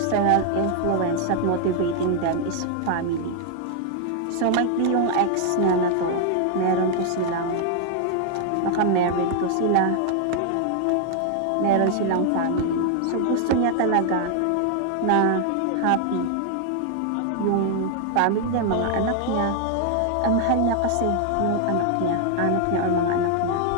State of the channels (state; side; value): different; both; correlation 0.00